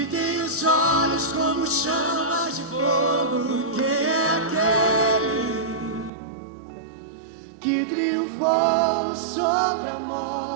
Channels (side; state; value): left; drops out; at 6.1 s